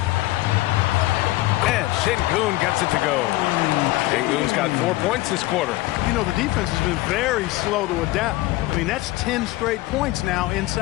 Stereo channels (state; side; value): quieter; right; 18.2 dB